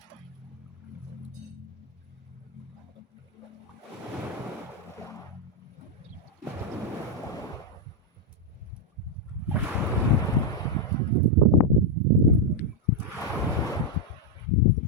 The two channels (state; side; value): normal; both; correlation 0.01